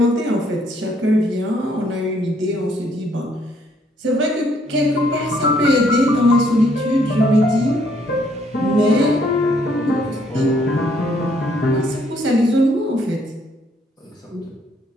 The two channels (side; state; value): both; normal; correlation 0.68